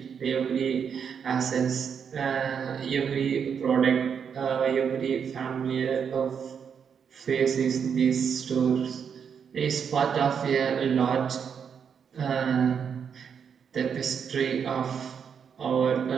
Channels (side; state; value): left; quieter; 7.1 dB